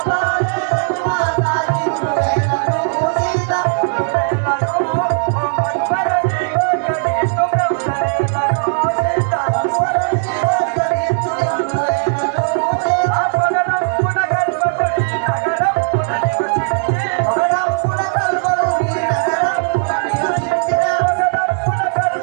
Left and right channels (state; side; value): silent; left; 61 dB below the other